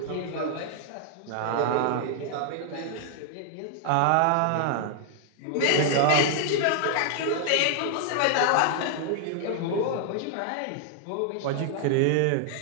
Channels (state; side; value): different; both; correlation 0.00